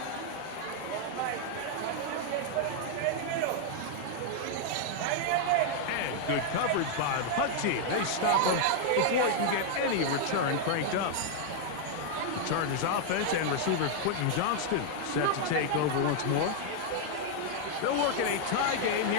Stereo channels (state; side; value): different; both; correlation 0.00